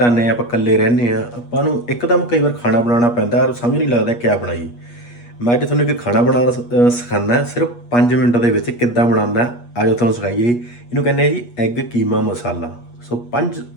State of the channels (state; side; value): late; right; 8.4 ms